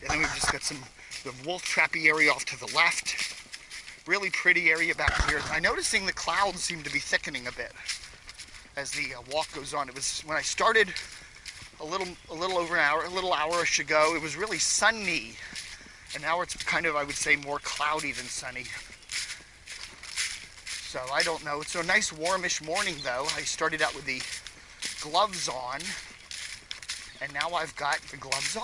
and then we've just got the wolf trappy area off to the left. Really pretty area back here. I'm noticing the clouds seem to be thickening a bit as the walk goes on. It was when I started a little over an hour, a little hour-ish ago. It was really sunny, and now it's kind of, I would say, more cloudy than sunny. So I don't know. It's a nice warmish morning though. I started out with the gloves on, and now I've got the gloves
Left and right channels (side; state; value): both; identical; correlation 1.00